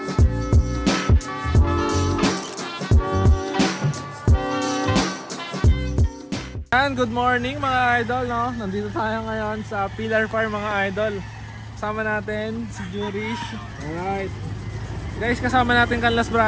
Good morning mga idol, no? Nandito tayo ngayon sa Pillar Farm mga idol. Kasama natin si Jurish. Alright. Guys, kasama natin Canlas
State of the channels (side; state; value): both; identical; correlation 1.00